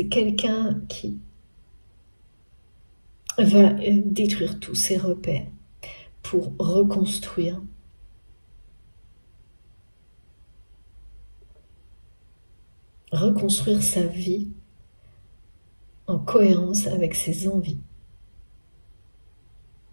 quelqu'un qui va détruire tous ses repères pour reconstruire. Reconstruire sa vie en cohérence avec ses envies.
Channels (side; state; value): both; inverted; correlation -1.00